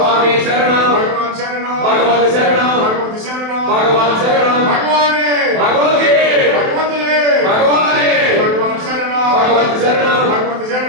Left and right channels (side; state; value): left; late; 27 ms